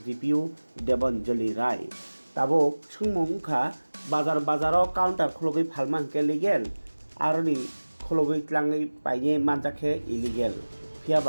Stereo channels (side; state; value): both; inverted; correlation -1.00